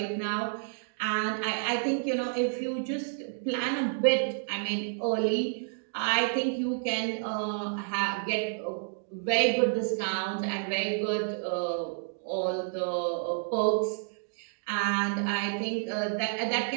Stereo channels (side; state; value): left; silent; digital silence